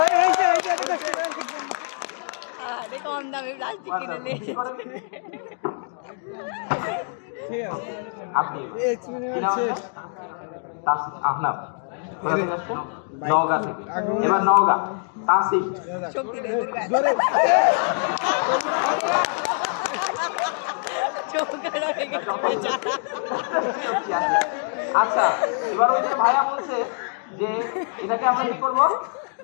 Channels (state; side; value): silent; right; 62 dB below the other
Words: আরে কম দামে প্লাস্টিক কিনে নিয়ে ঠিক আছে আপনি এক্সপেরিমেন্ট শেষ আপনার কোথা থেকে আসছেন? নওগাঁ থেকে। এবার নওগাঁ তাসিফ শক্তি নেই জোরে আচ্ছা এবার ওই যে ভাইয়া বলছে যে এটাকে আমরা কি করব